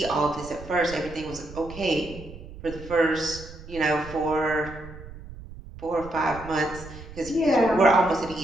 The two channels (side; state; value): right; noise; rumble, 15 dB below the sound